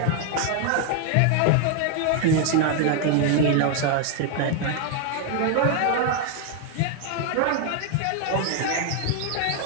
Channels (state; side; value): different; both; correlation 0.00